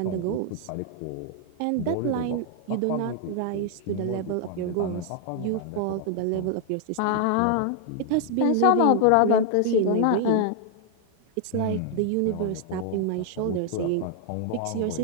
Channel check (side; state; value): both; different; correlation 0.00